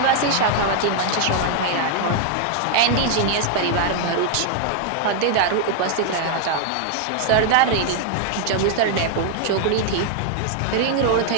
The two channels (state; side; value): different; both; correlation 0.00